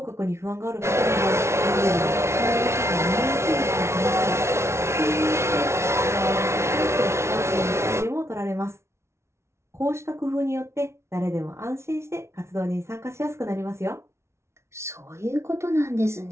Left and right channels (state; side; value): late; left; 0.13 ms